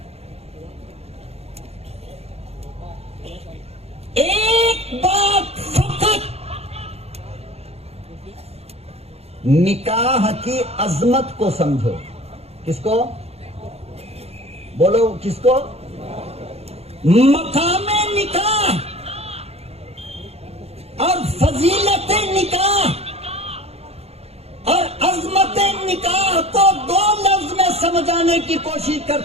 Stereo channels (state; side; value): late; left; 0.30 ms